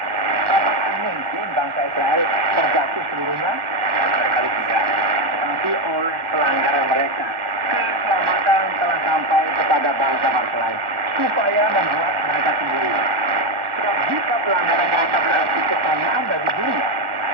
Apakah mungkin bangsa Israel terjatuh seluruhnya? Barangkali tidak. Tetapi oleh pelanggaran mereka, keselamatan telah sampai kepada bangsa-bangsa lain, supaya membuat mereka sendiri. Sebab jika pelanggaran mereka berarti kekayaan bagi dunia,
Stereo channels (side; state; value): left; late; 1.1 ms